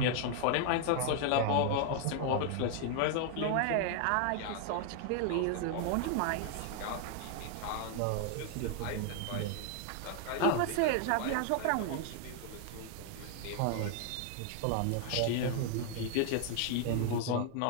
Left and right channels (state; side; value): different; both; correlation 0.00